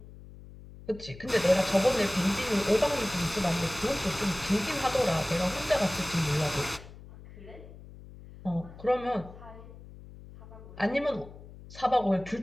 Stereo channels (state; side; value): noise; left; hum, 17 dB below the sound